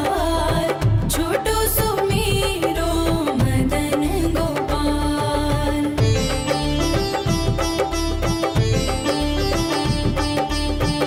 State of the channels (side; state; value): both; identical; correlation 1.00